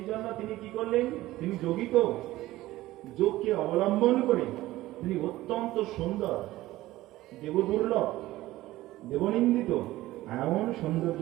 জন্য তিনি কি করলেন, তিনি যোগিত যোগকে অবলম্বন করে তিনি অত্যন্ত সুন্দর, দেবদুর্লভ, দেবনিন্দিত এমন সৌন্দর্য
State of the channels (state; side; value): quieter; left; 16.7 dB